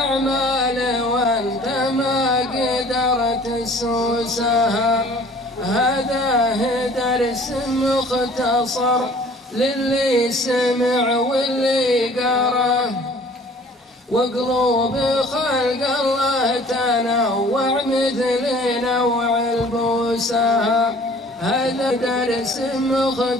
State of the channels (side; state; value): both; normal; correlation 0.51